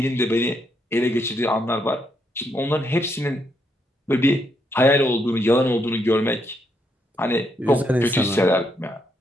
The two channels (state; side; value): normal; both; correlation 0.77